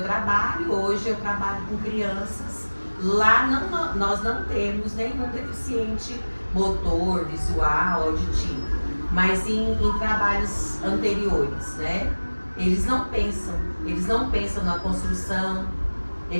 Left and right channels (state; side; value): inverted; both; correlation -1.00